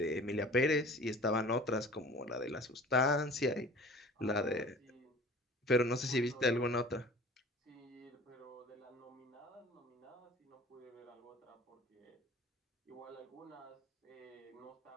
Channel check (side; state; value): both; normal; correlation 0.44